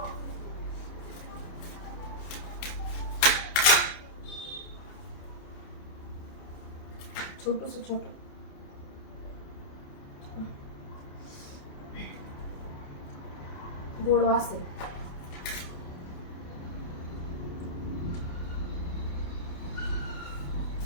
छोटूस छोटं गोड वास आहे.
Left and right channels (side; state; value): right; late; 28 ms